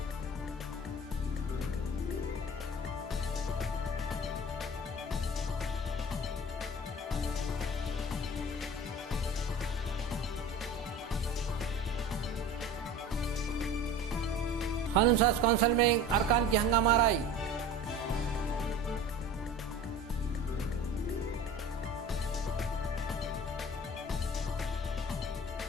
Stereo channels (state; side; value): normal; both; correlation 0.39